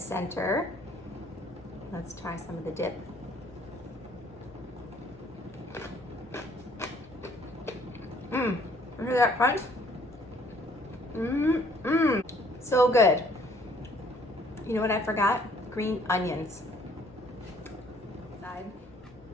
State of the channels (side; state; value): both; normal; correlation 0.61